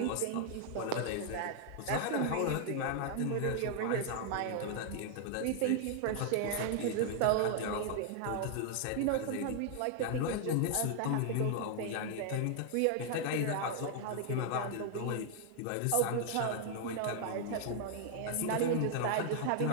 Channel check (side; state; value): both; different; correlation 0.00